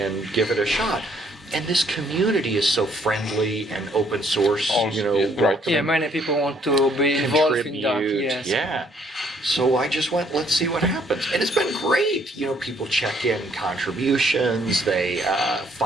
give it a shot? And this community is so friendly and open source, Yeah, many people want to be involved in that. Yes. Yeah. So I just went, let's see what happens. And it's been great. People check in contributions. They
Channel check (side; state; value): both; normal; correlation 0.65